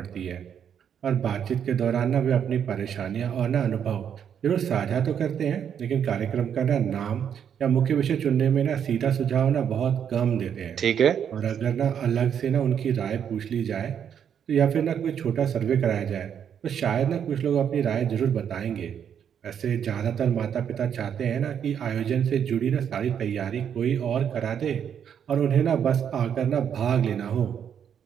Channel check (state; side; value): quieter; left; 8.4 dB